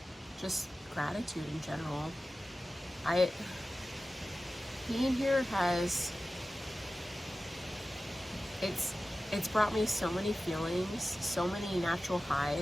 just gratitude in general. Being here it's brought me so many feelings, so many natural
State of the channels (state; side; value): normal; both; correlation 0.95